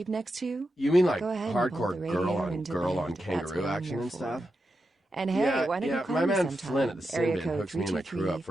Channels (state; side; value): normal; both; correlation 0.88